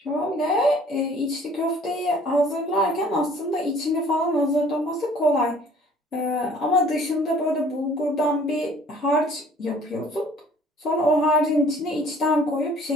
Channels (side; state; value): both; normal; correlation 0.54